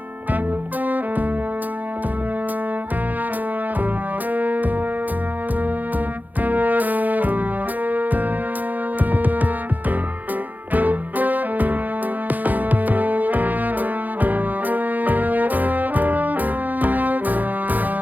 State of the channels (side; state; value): left; late; 0.082 ms